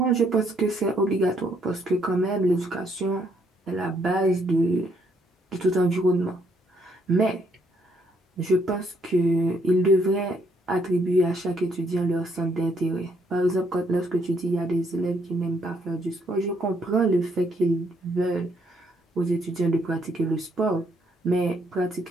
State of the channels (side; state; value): both; normal; correlation 0.71